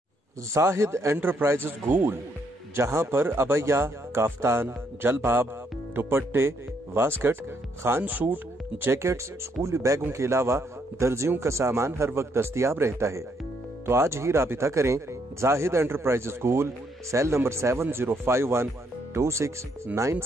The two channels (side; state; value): both; normal; correlation 0.73